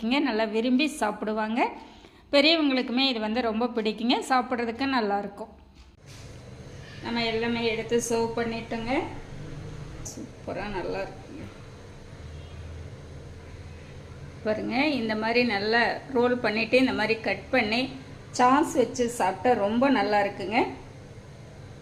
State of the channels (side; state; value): both; identical; correlation 1.00